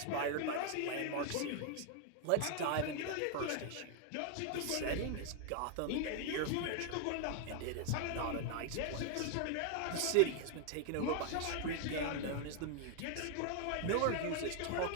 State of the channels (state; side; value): different; both; correlation 0.00